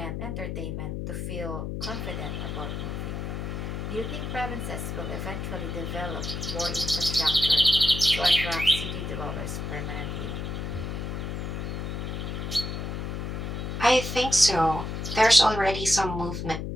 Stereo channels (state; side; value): noise; left; hum, 4 dB below the sound